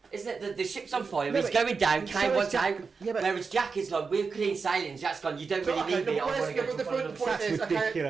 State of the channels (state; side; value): quieter; left; 5.0 dB